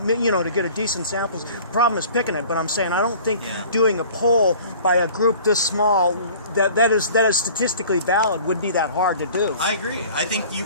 to get a decent sample. The problem is picking it, but I'm saying I don't think doing a poll by a group this small that is statistically valid would be that hard to do. I agree. I think you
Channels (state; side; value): inverted; both; correlation -0.47